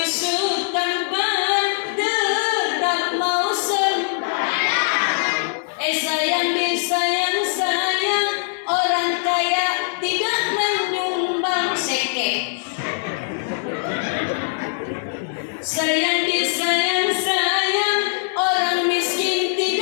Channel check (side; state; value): right; silent; 59 dB below the other